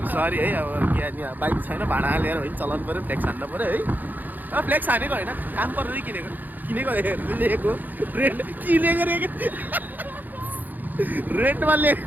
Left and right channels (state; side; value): late; left; 0.085 ms